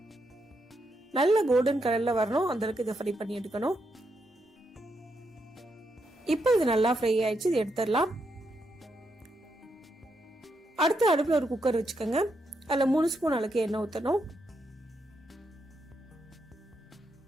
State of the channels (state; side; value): normal; both; correlation 0.81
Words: நல்ல கோல்டன் கலர்ல வரணும், அந்த அளவுக்கு இதை ஃப்ரை பண்ணி எடுக்கணும். இப்போ இது நல்லா ஃப்ரை ஆயிடுச்சு, இது எடுத்துடலாம். அடுத்து அடுப்புல ஒரு குக்கர் வச்சுக்கோங்க. அதுல 3 ஸ்பூன் அளவுக்கு எண்ணெய் ஊற்றணும்.